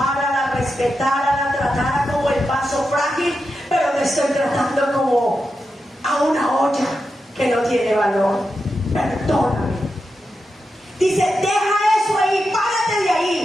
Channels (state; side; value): normal; both; correlation 0.88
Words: la respetara, la tratara como el vaso frágil, pero me estoy tratando como a una olla que no tiene valor. Perdóname. Dice, deja eso ahí, párate de